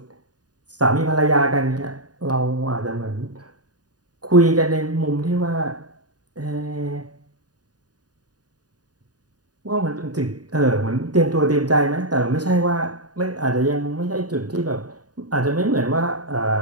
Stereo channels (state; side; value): late; left; 0.68 ms